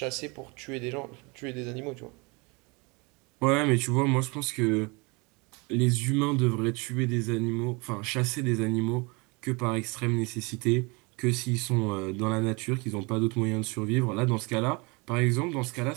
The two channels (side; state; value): left; quieter; 28.3 dB